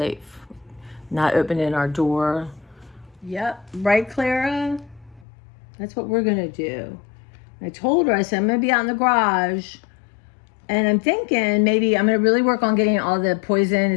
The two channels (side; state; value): right; drops out; at 5.2 s